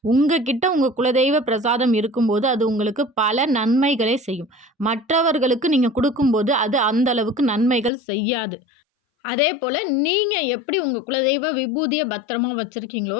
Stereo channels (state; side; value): drops out; right; at 7.9 s